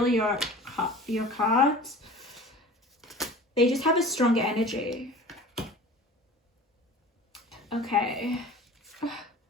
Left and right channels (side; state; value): both; normal; correlation 0.40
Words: your cards, they just have a stronger energy. Okay.